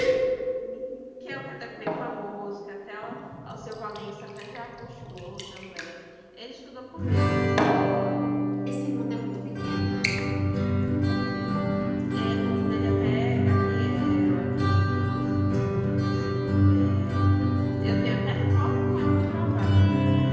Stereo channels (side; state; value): both; identical; correlation 1.00